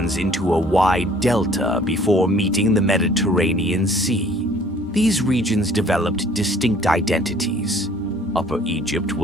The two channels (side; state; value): both; normal; correlation 0.55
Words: into a wide delta before meeting the Mediterranean Sea. These regions developed distinct identities. Upper Egypt